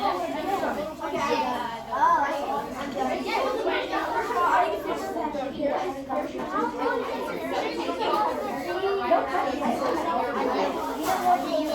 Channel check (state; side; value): identical; both; correlation 1.00